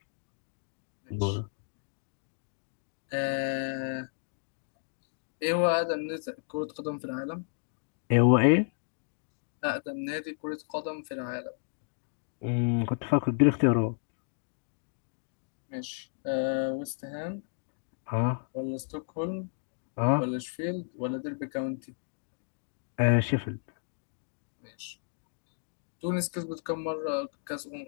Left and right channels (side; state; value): right; silent; digital silence